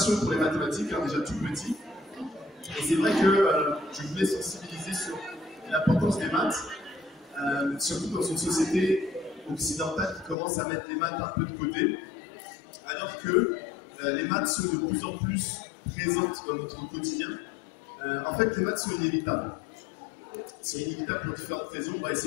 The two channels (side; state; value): right; drops out; at 10.4 s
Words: pour les mathématiques, déjà tout petit. Et c'est vrai que je voulais sensibiliser sur l'importance des maths, surtout dans une société occidentale qui commence à mettre les maths un peu de côté, alors que les maths sont de plus en plus présentes dans notre quotidien. En fait, les maths sont inévitables. C'est inévitable pour différentes raisons, on va